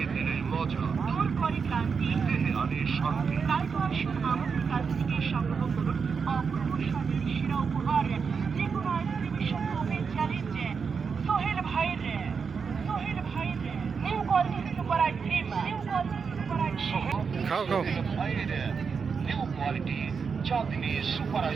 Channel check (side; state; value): left; quieter; 5.7 dB